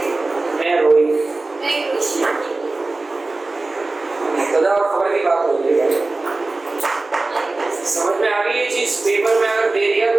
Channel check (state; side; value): quieter; left; 3.3 dB